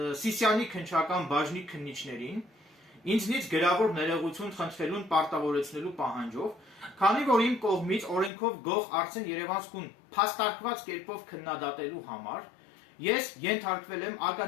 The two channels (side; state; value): right; drops out; at 8.3 s